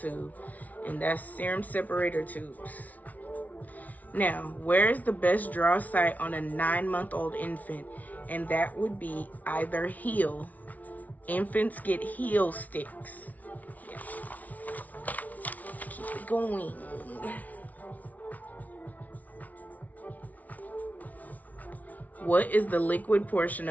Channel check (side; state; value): right; late; 0.074 ms